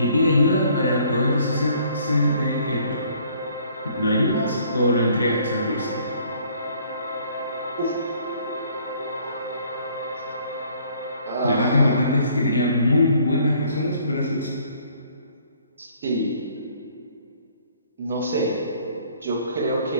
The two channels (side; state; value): both; inverted; correlation -0.60